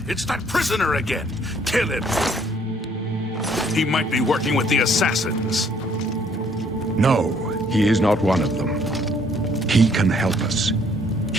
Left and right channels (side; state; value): both; normal; correlation 0.63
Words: It's that prisoner again! Kill him! He might be working with the assassins. No, he is not one of them. He can help us.